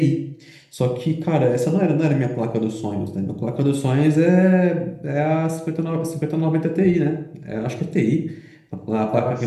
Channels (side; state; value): both; identical; correlation 1.00